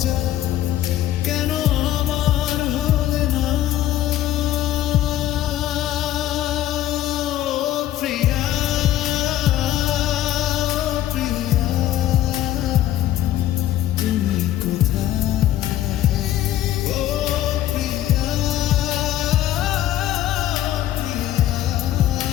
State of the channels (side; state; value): right; quieter; 13.0 dB